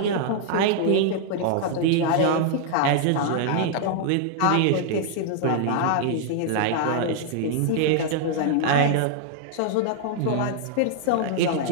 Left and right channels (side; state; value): both; different; correlation 0.00